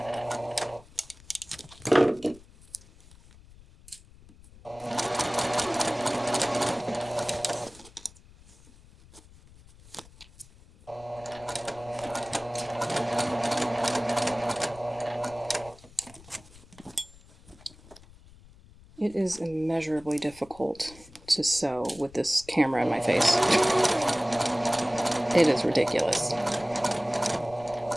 It is immeasurably difficult to sew with this camera in my face. It is ridiculous.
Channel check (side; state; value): left; noise; rumble, 23 dB below the sound